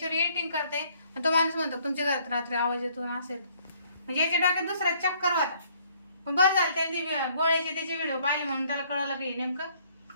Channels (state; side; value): inverted; both; correlation -0.63